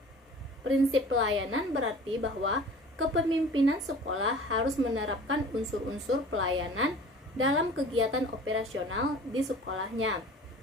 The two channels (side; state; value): both; normal; correlation 0.43